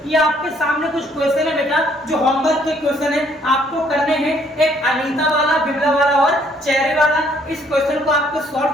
ये आपके सामने कुछ क्वेश्चन है बेटा, जो होमवर्क के क्वेश्चन है, आपको करने हैं। एक अनीता वाला, बिमला वाला और चेहरे वाला। इस क्वेश्चन को आपको सॉल्व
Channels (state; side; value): normal; both; correlation 0.64